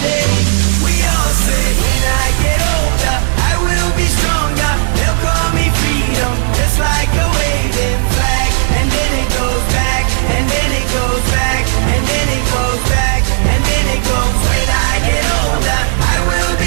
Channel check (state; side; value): silent; left; 61 dB below the other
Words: day, we all say, when I get older, I will be stronger. They'll call me freedom, just like a waving flag. And then it goes back, and then it goes back, and then it goes back, and then it goes. When I get older, I will